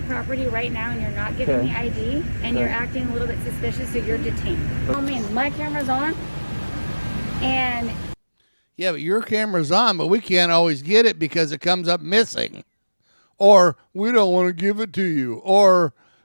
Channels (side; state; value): both; inverted; correlation -1.00